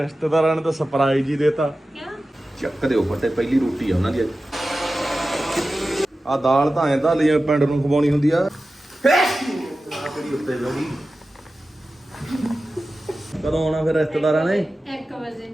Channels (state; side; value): normal; both; correlation 0.94